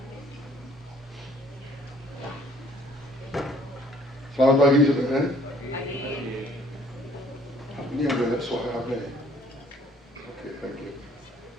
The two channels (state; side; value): normal; both; correlation 0.59